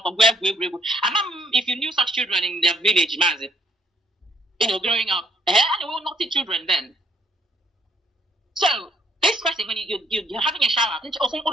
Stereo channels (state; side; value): normal; both; correlation 0.68